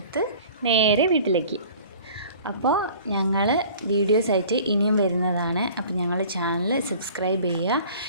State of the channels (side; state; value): both; inverted; correlation -0.47